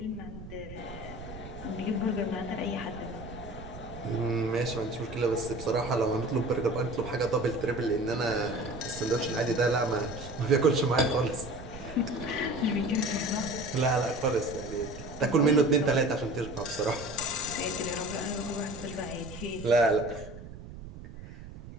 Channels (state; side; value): noise; right; rumble, 13 dB below the sound